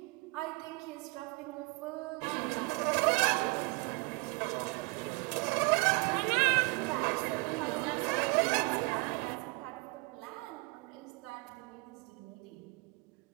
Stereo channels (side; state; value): left; quieter; 28.3 dB